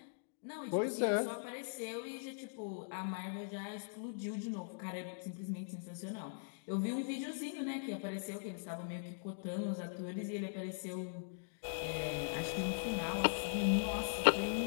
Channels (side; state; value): right; silent; digital silence